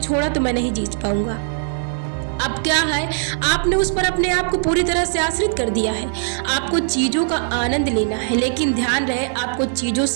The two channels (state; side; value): silent; left; digital silence